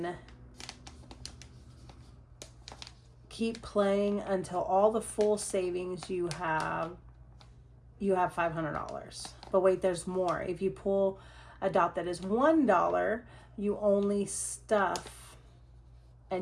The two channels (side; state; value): both; identical; correlation 1.00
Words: keep playing until all the full savings you have $500. But wait, there's more. If you pull a dot that is $1, you only stuff